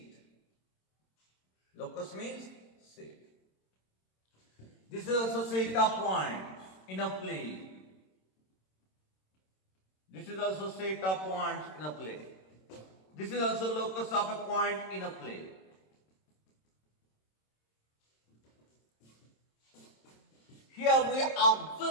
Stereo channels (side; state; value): right; late; 26 ms